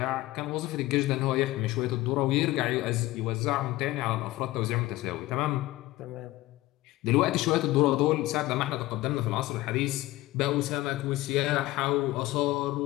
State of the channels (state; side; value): quieter; right; 17.9 dB